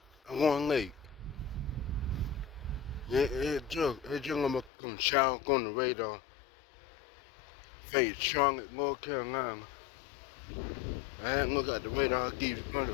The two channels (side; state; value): right; drops out; at 4.7 s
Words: I want late. It just gonna come shower on the radar. Face Charlotte, North Carolina. I hadn't looked at the radar, I keep